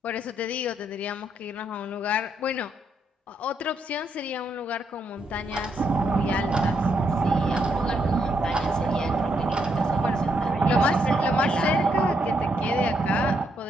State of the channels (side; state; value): both; normal; correlation 0.77